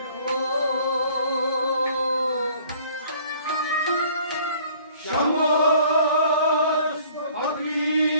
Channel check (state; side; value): inverted; both; correlation -0.55